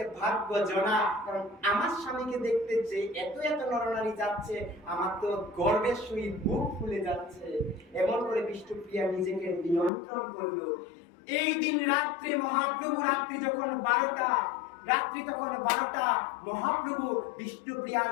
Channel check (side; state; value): right; drops out; at 9.9 s